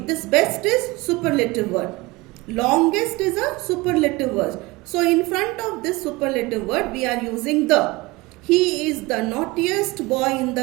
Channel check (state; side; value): quieter; left; 22.4 dB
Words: best is superlative word. Longest is a superlative word. So in front of this superlative word, we are using the. He is the naughtiest boy in